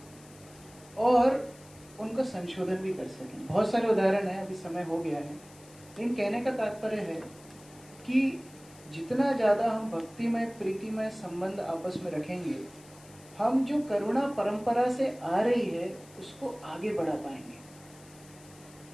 और उनका संशोधन भी कर सकें। बहुत सारे उदाहरण हैं, अभी समय हो गया है, लेकिन कहने का तात्पर्य है कि जितना ज्यादा हम भक्तिमय प्रीतिमय संबंध आपस में रखेंगे, हम जो करुणा परंपरा से आ रही है उसको आगे बढ़ा पाएंगे।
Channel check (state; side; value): noise; left; hiss, 23 dB below the sound